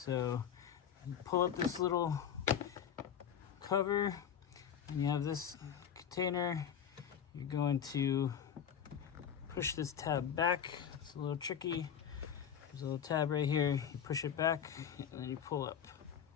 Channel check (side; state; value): right; quieter; 8.6 dB